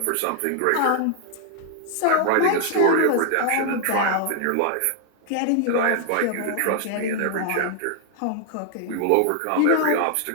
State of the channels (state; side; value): different; both; correlation 0.00